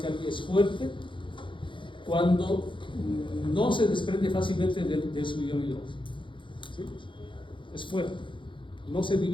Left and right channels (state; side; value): late; right; 0.24 ms